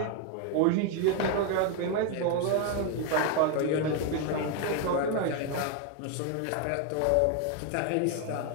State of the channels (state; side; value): different; both; correlation 0.01